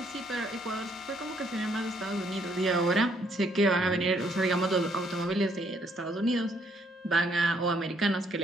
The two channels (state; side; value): normal; both; correlation 0.69